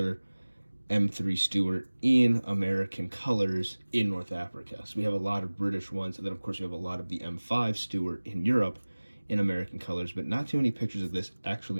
M3 Stuart in American colors in North Africa. So we have a lot of British ones, and then of course we have a lot of the M5 Stuart in Europe in American colors, but not too many pictures of this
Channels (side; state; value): both; inverted; correlation -1.00